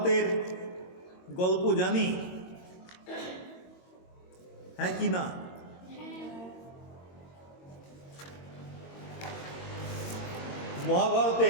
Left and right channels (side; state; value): right; late; 22 ms